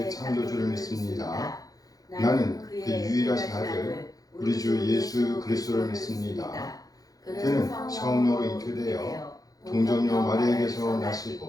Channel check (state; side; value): late; right; 0.18 ms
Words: 창조주를 믿습니다. 나는 그 유일하신 아들, 우리 주 예수 그리스도를 믿습니다. 그는 성령으로 잉태되어 동정녀 마리아에게서